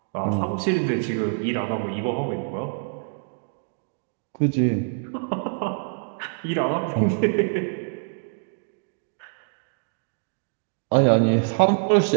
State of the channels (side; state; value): left; silent; digital silence